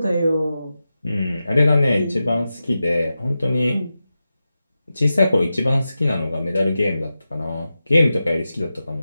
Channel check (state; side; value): inverted; both; correlation -0.92